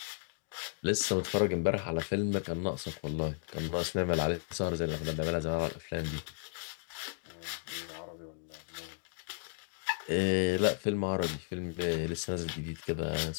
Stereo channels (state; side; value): silent; right; digital silence